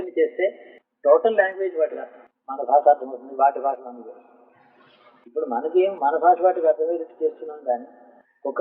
చేస్తే టోటల్ లాంగ్వేజ్ వాటికి అర్థం, మన భాష అర్థమవుతుంది, వాటి భాష మనకి. ఇప్పుడు మనకి మన భాష వాటికి అర్థమయ్యేట్టు చేస్తున్నాం, కానీ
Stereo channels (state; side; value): identical; both; correlation 1.00